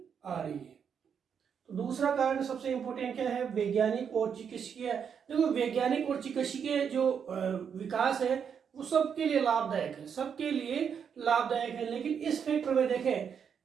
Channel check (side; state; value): left; quieter; 7.3 dB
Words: आ रही है। तो दूसरा कारण सबसे इंपॉर्टेंट क्या है? वैज्ञानिक और चिकित्सकीय। देखो, वैज्ञानिक और चिकित्सकीय जो विकास है वो सबके लिए लाभदायक है, सबके लिए लाभदायक है। लेकिन इस फैक्टर